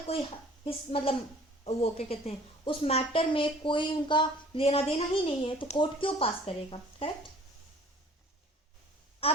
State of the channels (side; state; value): both; normal; correlation 0.52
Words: कोई मतलब वो क्या कहते हैं उस मैटर में कोई उनका लेना देना ही नहीं है, तो कोर्ट क्यों पास करेगा. करेक्ट.